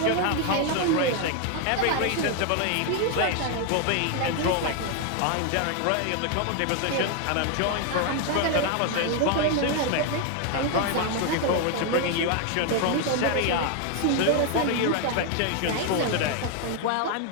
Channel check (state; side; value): different; both; correlation 0.01